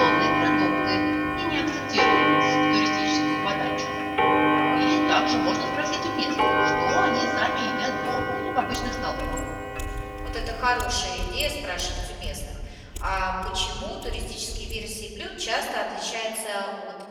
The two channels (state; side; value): identical; both; correlation 1.00